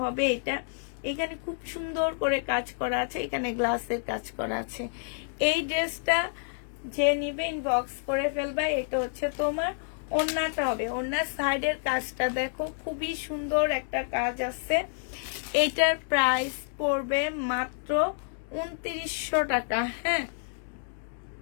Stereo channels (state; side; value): silent; right; digital silence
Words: হবে এটা। এখানে খুব সুন্দর করে কাজ করা আছে, এখানে গ্লাসের কাজ করা আছে। এই ড্রেসটা যে নিবে ইনবক্স করে ফেলবা। এটা হচ্ছে তোমার ওড়নাটা হবে, ওড়নার সাইডের কাজটা দেখো খুবই সুন্দর একটা কাজ আছে। এটার প্রাইস পড়বে মাত্র 2900 টাকা। হ্যাঁ,